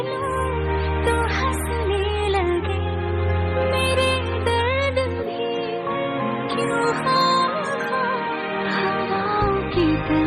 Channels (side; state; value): both; identical; correlation 1.00